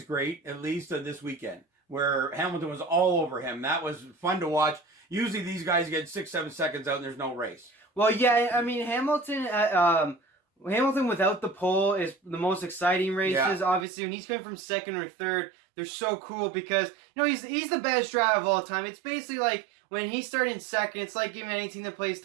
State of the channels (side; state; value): left; drops out; at 13.9 s